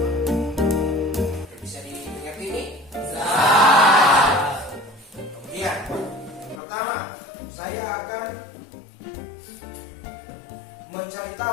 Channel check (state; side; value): drops out; right; at 6.6 s